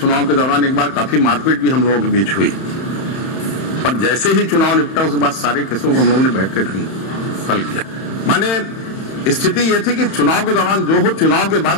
के दौरान एक बार काफी मारपीट भी हम लोगों के बीच हुई, पर जैसे ही चुनाव निपटा उसके बाद सारे केसों को हम लोगों ने बैठ कर हल किया। माने स्थिति यह थी कि चुनाव के दौरान जो हो, चुनाव के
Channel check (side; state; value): right; late; 31 ms